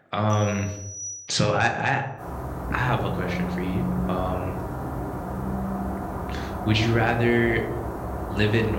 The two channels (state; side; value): identical; both; correlation 1.00